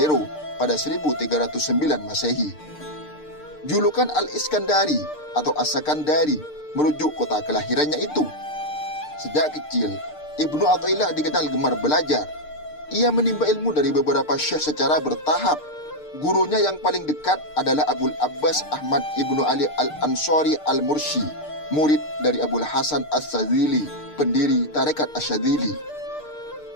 pada 1309 Masehi. Julukan Al-Iskandari atau As-Sakandari merujuk kota kelahirannya itu. Sejak kecil, Ibnu Athaillah dikenal gemar belajar. Ia menimba ilmu dari beberapa syekh secara bertahap. Gurunya yang paling dekat adalah Abul Abbas Ahmad Ibnu Ali Al-Ansari Al-Mursi, murid dari Abul Hasan As-Sadzili, pendiri Tarekat Asy-Syadzili.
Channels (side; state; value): right; late; 6.6 ms